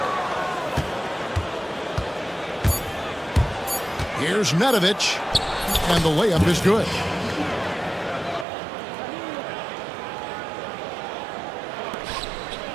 Here's Nedovic, and the layup is good.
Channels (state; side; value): drops out; left; at 8.5 s